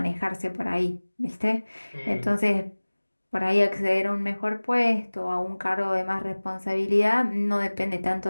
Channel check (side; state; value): both; inverted; correlation -1.00